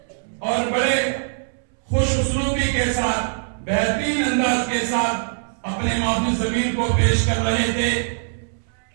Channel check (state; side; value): silent; left; 64 dB below the other